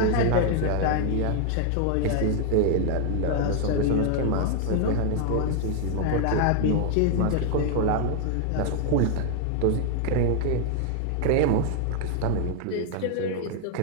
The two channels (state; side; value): different; both; correlation 0.00